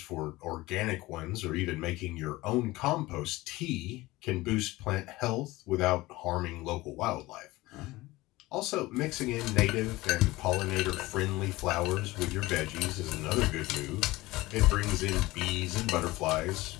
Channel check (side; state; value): right; quieter; 19.5 dB